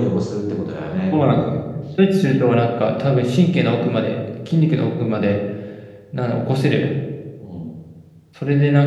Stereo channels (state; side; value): identical; both; correlation 1.00